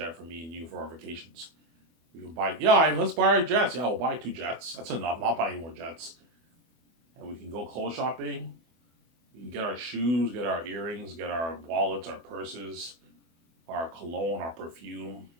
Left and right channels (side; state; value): left; late; 24 ms